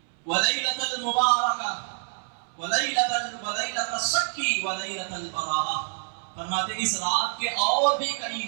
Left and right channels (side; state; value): left; silent; 60 dB below the other